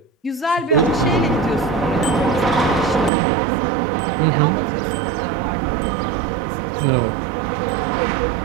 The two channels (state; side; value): drops out; left; at 3.1 s